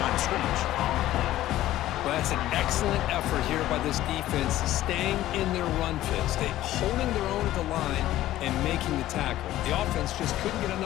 of scrimmage. Well, that's an excellent effort here by this defense, staying in their run fits. They holding their own at the line and making the tackle. The offense just couldn't get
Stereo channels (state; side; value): quieter; right; 14.5 dB